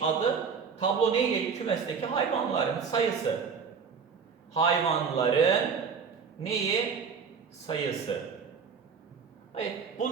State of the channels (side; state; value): left; quieter; 6.0 dB